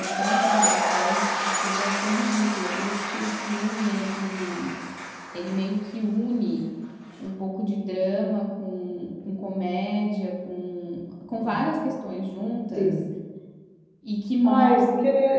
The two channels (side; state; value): both; identical; correlation 1.00